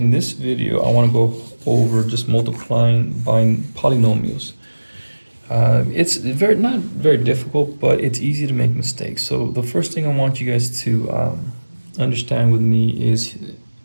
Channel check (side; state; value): both; inverted; correlation -1.00